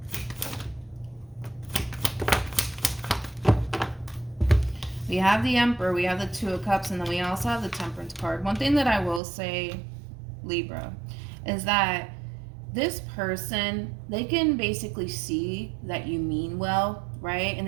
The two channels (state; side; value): drops out; left; at 9.2 s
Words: We have the Emperor, we have the Two of Cups, and then we also have the Temperance card. One thing that I will say, Libra, is that this person, they can basically see that you mean well, right? And